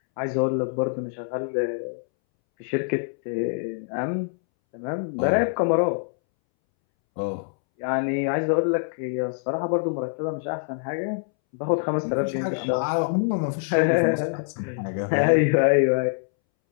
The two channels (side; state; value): right; silent; 62 dB below the other